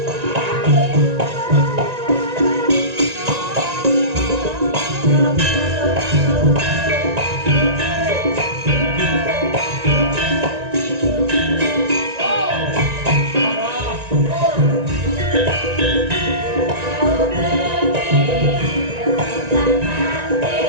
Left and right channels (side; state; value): left; late; 1.9 ms